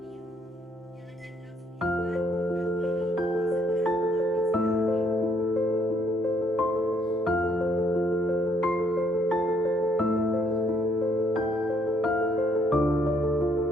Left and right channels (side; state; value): both; normal; correlation 0.68